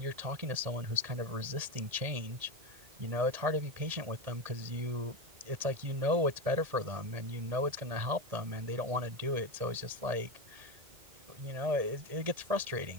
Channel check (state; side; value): late; left; 1.7 ms